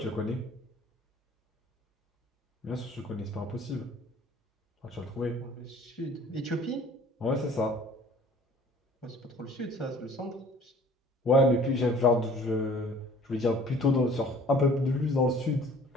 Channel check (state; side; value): normal; both; correlation 0.51